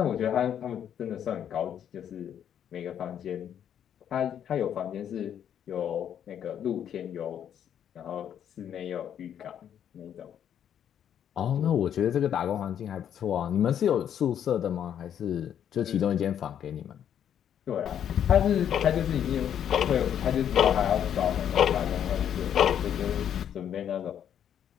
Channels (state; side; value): quieter; right; 9.4 dB